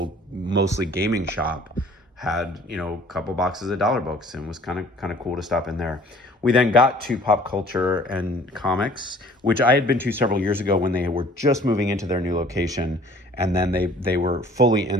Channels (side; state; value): both; normal; correlation 0.53